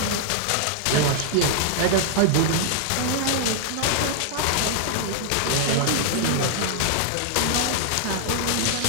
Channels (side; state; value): both; different; correlation -0.01